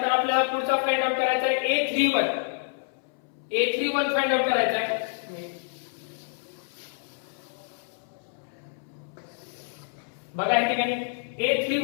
आपल्याला पुढचा फाइंड आउट करायचा आहे a31 फाइंड आउट करायचा आहे. बघा या ठिकाणी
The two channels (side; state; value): right; silent; 60 dB below the other